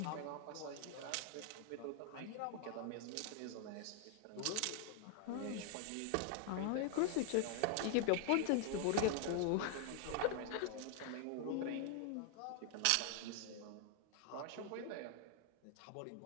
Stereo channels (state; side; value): different; both; correlation 0.00